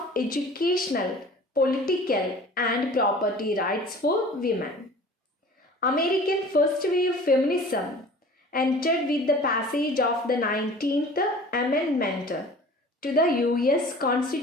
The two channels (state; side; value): normal; both; correlation 0.44